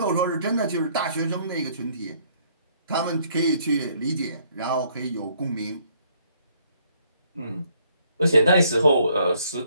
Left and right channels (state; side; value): inverted; both; correlation -0.66